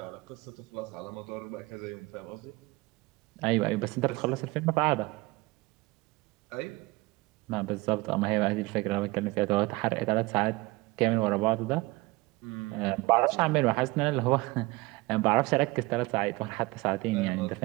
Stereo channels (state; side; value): quieter; left; 22.3 dB